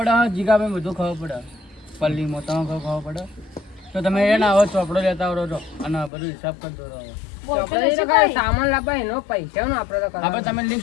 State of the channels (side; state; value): right; drops out; at 6.1 s